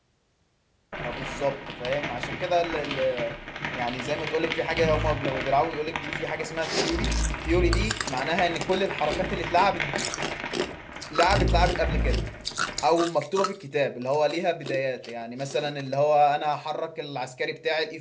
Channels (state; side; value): identical; both; correlation 1.00